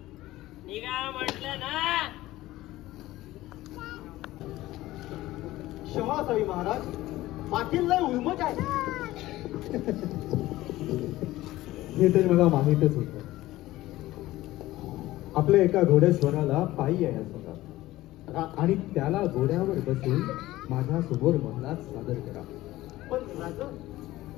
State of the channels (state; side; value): quieter; right; 16.7 dB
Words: निघा म्हटलं ना. क्षमा असावी महाराज, पाटील लय उर्मट आहे. हे तर मला माहीतच होतं. आपल्या एका घोडेस्वराला पायी यायचं होता आणि त्याला घोड्यावर बसून माझ्या समोर महलात सादर करा. पण राजा,